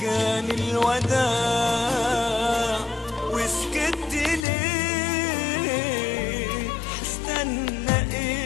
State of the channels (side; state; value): right; drops out; at 4.5 s